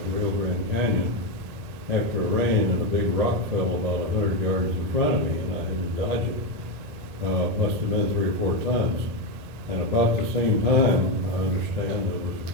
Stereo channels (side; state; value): left; late; 1.8 ms